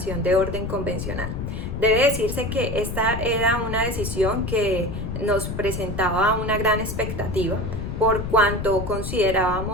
de orden convencional. Debe decirse que esta era una decisión que nos presentaba una gran expectativa por cuanto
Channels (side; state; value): left; noise; rumble, 5 dB below the sound